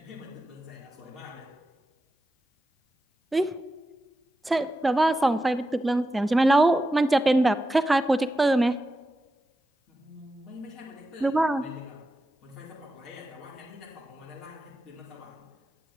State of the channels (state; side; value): normal; both; correlation 0.91